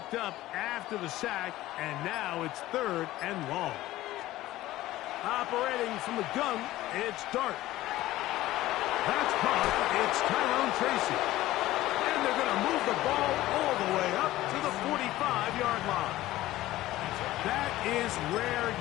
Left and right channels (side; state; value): right; quieter; 16.1 dB